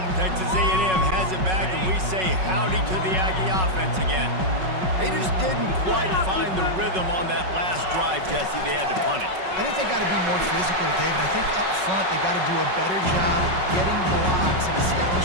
Texas A&M has it back, and we say howdy to the Aggie offense again. They just didn't quite find the rhythm on that last drive, Jesse. They had to punt it. I think they got to be more physical, David. I think up front they got to do a better job getting blocks and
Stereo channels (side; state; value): left; late; 5.4 ms